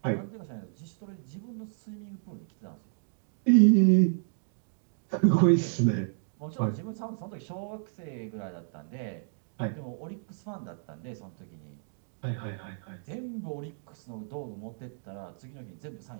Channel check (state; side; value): silent; left; digital silence